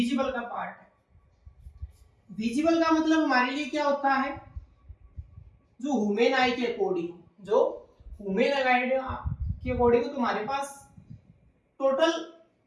का पार्ट है। विजिबल का मतलब हमारे लिए क्या होता है, जो ह्यूमन आई के अकॉर्डिंग, जो ह्यूमन आई के अकॉर्डिंग तुम्हारे पास टोटल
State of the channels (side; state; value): both; identical; correlation 1.00